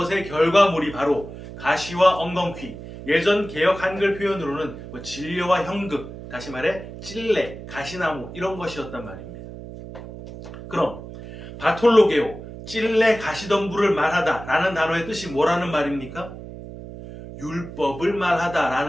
결과물이 바로 가시와 엉겅퀴, 예전 개역 한글 표현으로는 진려와 형극, 다시 말해 찔레, 가시나무 이런 것이었단 말입니다. 그럼 바톨로게오, 찔레 가시덤불을 말하다 라는 단어의 뜻이 뭐라는 말입니까? 율법을 말하다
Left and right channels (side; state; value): right; noise; hum, 13 dB below the sound